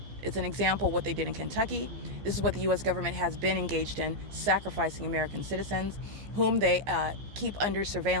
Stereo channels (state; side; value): late; left; 14 ms